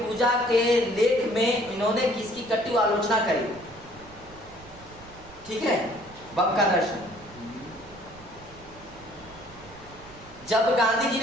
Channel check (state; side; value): noise; right; rumble, 21 dB below the sound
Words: के लेख में इन्होंने किसकी कटु आलोचना करी। ठीक है, बम का दर्शन। जब गांधी जी